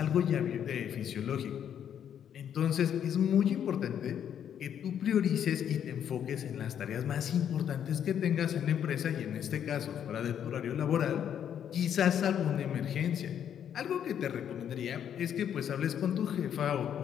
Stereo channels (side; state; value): right; quieter; 9.1 dB